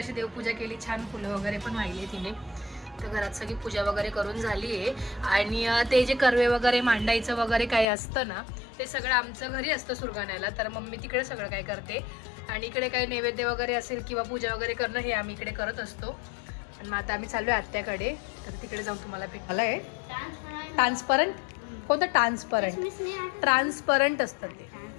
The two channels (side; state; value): right; drops out; at 7.9 s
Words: देवपूजा केली, छान फुलं वगैरे पण वाहिले तिने. तर घरात सगळी पूजा वगैरे करून झाली आहे. आणि ते जे कर्वे वगैरे मांडायचं वगैरे काही असतं ना, ते सगळं आमचं घरी असतं सुरगाण्याला. तर मम्मी तिकडे सगळं काय करते आणि इकडे काही नैवेद्य वगैरे असेल किंवा पूजा वगैरे करणं हे आम्ही इकडे करत असतो. आणि मग आता आम्ही चाललो आहे आत्याकडे. तर तिकडे जाऊन तुम्हाला भेटायला आहे. ट्रान्सपरंट कोणतं? ट्रान्सपरंट असतं